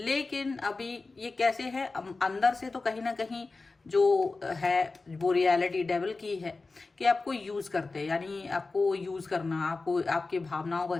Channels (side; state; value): right; quieter; 3.7 dB